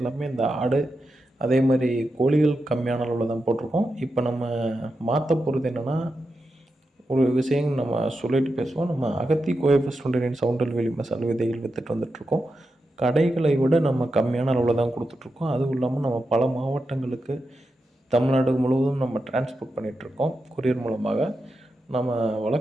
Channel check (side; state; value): both; normal; correlation 0.88